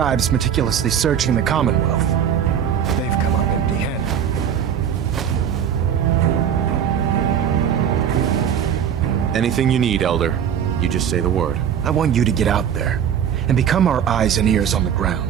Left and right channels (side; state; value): left; quieter; 8.7 dB